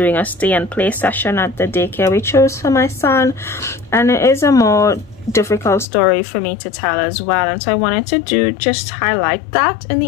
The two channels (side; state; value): right; drops out; at 5.9 s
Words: a stay and play session at the daycare we chose for my son, and it is a more difficult story for me to tell as well, and so I wanted to just highlight that in